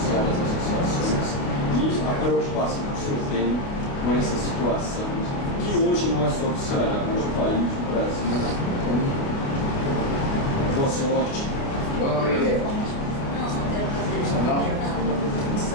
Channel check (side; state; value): right; late; 28 ms